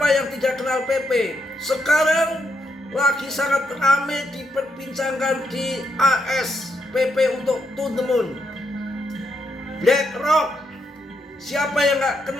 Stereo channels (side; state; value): both; normal; correlation 0.79